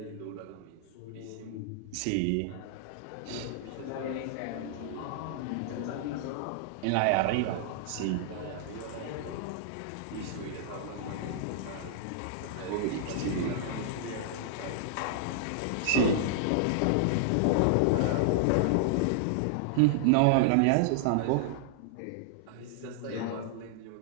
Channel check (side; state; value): both; different; correlation -0.01